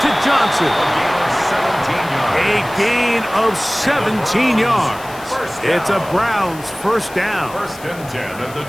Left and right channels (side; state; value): left; noise; hiss, 19 dB below the sound